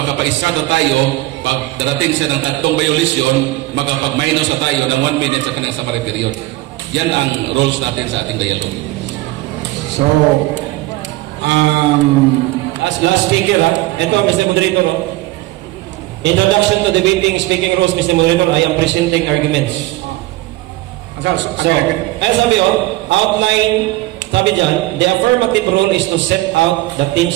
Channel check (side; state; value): left; quieter; 18.7 dB